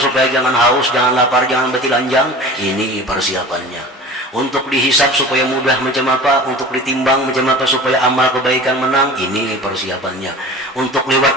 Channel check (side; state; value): both; normal; correlation 0.38